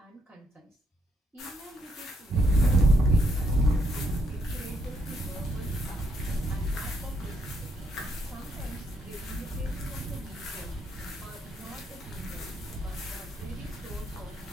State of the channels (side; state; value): both; normal; correlation 0.75